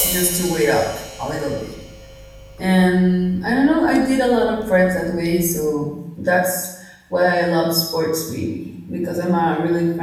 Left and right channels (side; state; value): both; identical; correlation 1.00